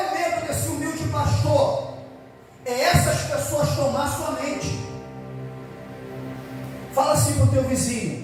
medo desse humilde pastor? É essas pessoas tomar sua mente. Fala assim para o teu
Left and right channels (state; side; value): identical; both; correlation 1.00